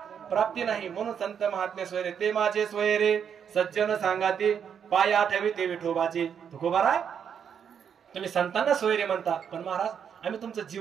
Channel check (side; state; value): left; quieter; 7.8 dB